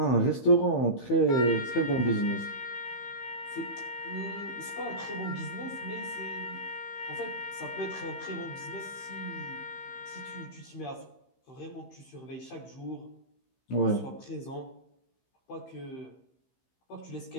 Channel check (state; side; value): late; right; 15 ms